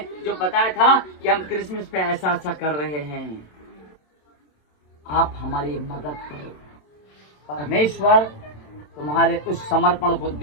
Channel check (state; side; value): late; right; 27 ms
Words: जो बताया था कि हम क्रिसमस पे ऐसा ऐसा कर रहे हैं, आप हमारी मदद करो। परमेश्वर तुम्हारे उस समर्पण को